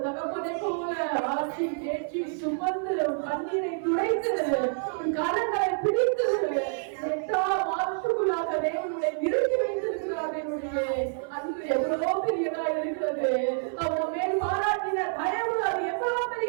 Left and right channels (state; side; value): silent; left; 59 dB below the other